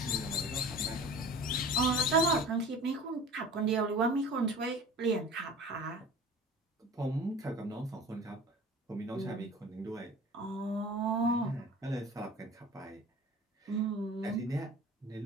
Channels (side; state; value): both; normal; correlation 0.41